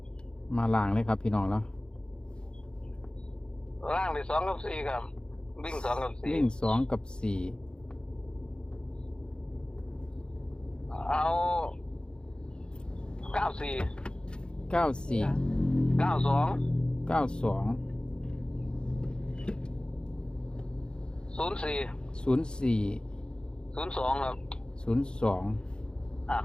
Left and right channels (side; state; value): right; late; 0.051 ms